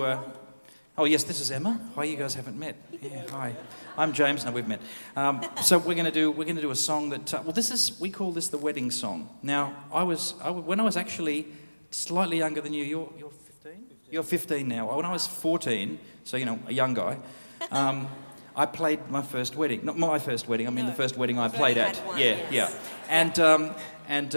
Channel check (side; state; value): both; inverted; correlation -1.00